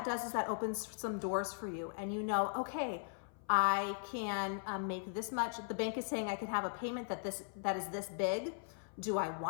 does is that opens some doors for you, and you know, okay, I can make this much. The bank is saying I can have a payment that is this big. Do I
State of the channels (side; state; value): right; silent; 52 dB below the other